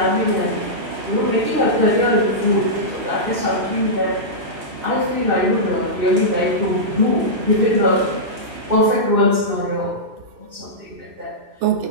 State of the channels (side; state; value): left; late; 2.6 ms